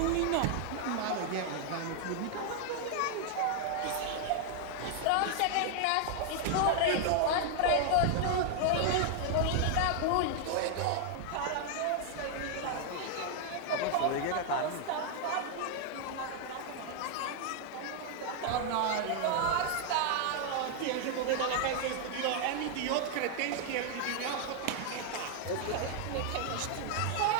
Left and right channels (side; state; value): both; different; correlation 0.00